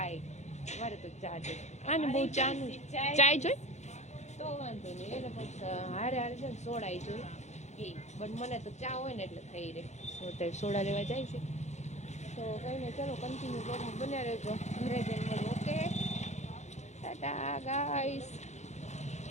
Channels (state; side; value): late; right; 0.33 ms